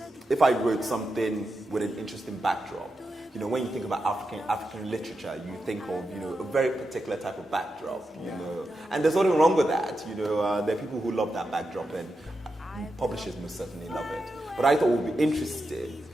if I wrote something with an interesting backdrop. When you think about African literature, you think of a very particular type of backdrop. And there's nothing wrong with that. There are people who love that backdrop, and publishers most certainly love it. But I thought it would be interesting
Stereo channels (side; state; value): both; normal; correlation 0.88